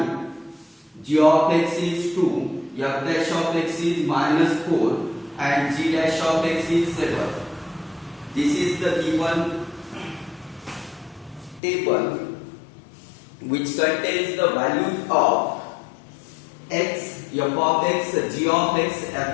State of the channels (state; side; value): drops out; right; at 11.6 s